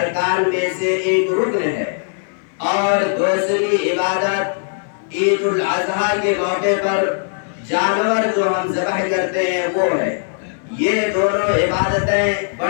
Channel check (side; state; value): right; silent; digital silence